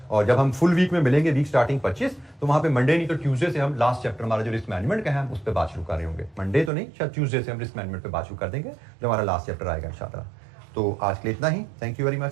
और जब हम फुल वीक में मिलेंगे वीक स्टार्टिंग 25, तो वहां पे मंडे नहीं तो ट्यूसडे से हम लास्ट चैप्टर हमारा जो रिस्क मैनेजमेंट का है उस पर बात शुरू कर रहे होंगे। मंडे तो नहीं, शायद ट्यूसडे से हम रिस्क मैनेजमेंट पे बात शुरू कर देंगे, जो हमारा लास्ट चैप्टर आएगा इंशाल्लाह। तो आज के लिए इतना ही। Thank you very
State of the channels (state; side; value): drops out; left; at 6.7 s